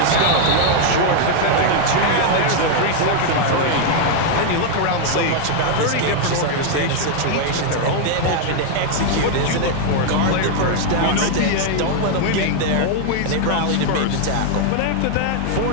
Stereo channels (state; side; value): different; both; correlation 0.00